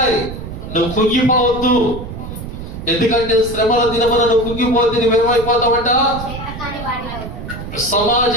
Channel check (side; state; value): right; noise; rumble, 10 dB below the sound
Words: నువ్వు కుంగిపోవద్దు. ఎందుకంటే శ్రమల దినమున నువ్వు కుంగిపోతే నువ్వేమైపోతావంట?